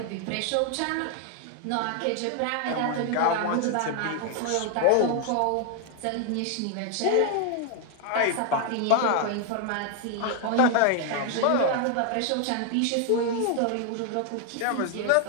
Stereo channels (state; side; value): different; both; correlation 0.00